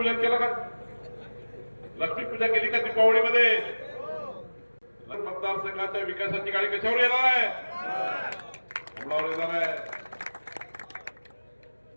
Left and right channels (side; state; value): both; inverted; correlation -1.00